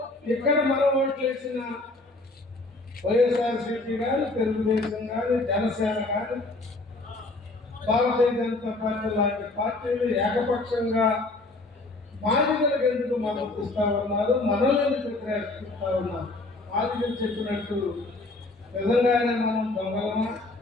ఇక్కడ మనం ఓట్లు వేసిన వైఎస్ఆర్సీపీ కానీ, తెలుగుదేశం కానీ, జనసేన కానీ, భారతీయ జనతా పార్టీ లాంటి పార్టీలు ఏకపక్షంగా బాధితులకు ఎందుకు మద్దతు ఇస్తా ఉన్నారు, మనల్ని ఎందుకు వ్యతిరేకిస్తూ ఉన్నారు? బాధితులు చెప్పినట్టు నిజంగానే మనం దొంగలమా,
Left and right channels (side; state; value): right; quieter; 3.0 dB